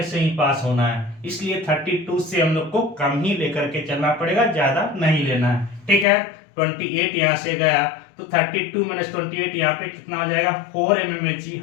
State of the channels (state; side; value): drops out; right; at 6.1 s